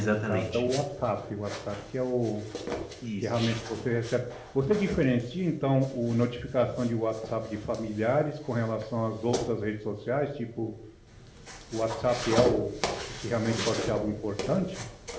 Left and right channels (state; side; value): identical; both; correlation 1.00